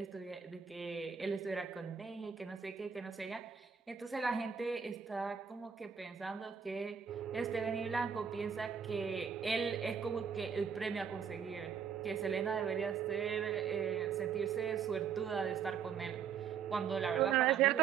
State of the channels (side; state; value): left; quieter; 7.0 dB